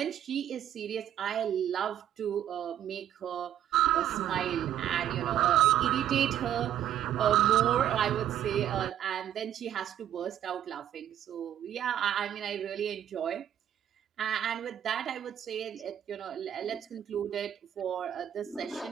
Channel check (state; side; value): quieter; left; 10.5 dB